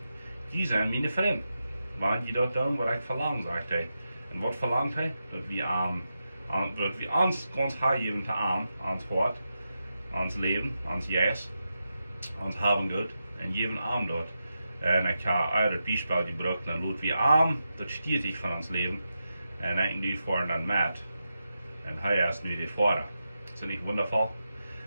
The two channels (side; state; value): both; inverted; correlation -0.89